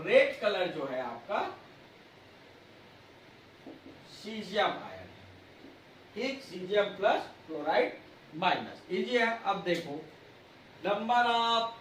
रेड कलर जो है आपका सीजियम आयन। ठीक, caesium plus chloride minus, easy है। अब देखो नंबर ऑफ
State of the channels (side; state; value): both; identical; correlation 1.00